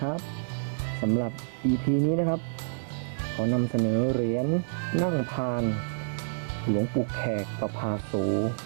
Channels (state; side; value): silent; left; digital silence